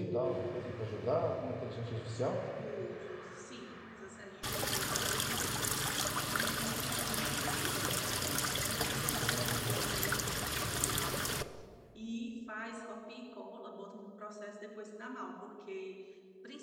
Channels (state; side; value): identical; both; correlation 1.00